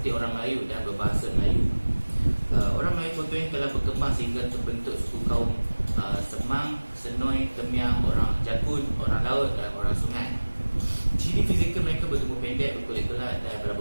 orang Melayu dan berbahasa Melayu. Orang Melayu Proto ini telah berkembang sehingga terbentuk suku kaum Semang, Senoi, Temiang, orang Jakun, orang laut dan orang sungai. Ciri fizikal mereka bertubuh pendek, berkulit gelap dan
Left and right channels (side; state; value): both; inverted; correlation -1.00